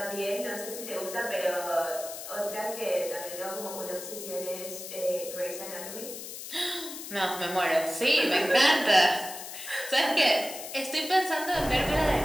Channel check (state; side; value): noise; left; hiss, 10 dB below the sound